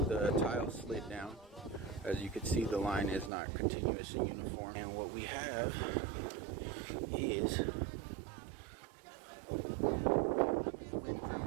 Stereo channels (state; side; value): drops out; left; at 3.3 s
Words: The tile slid down. As you can see, the line is not continuous and uniform. And what we have is